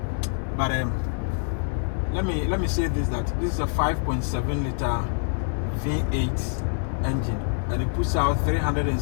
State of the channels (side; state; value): right; silent; digital silence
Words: but let me say this, that this is a 5.7 liter V8 engine, and it puts out